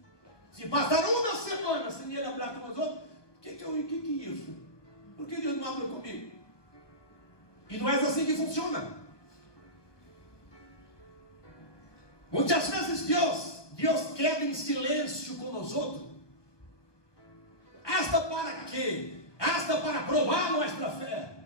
Se passar uma semana sem Ele falar com nós outros, o que é isso? Por que Deus não abre comigo? E não é assim que funciona. Muitas vezes Deus queda em silêncio com nós outros. Hasta para quê? Hasta para provar nossa fé.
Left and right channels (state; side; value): late; right; 1.2 ms